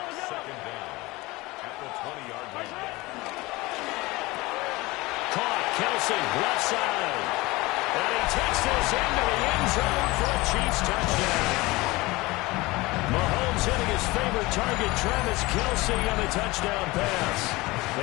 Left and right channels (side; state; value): right; quieter; 21.6 dB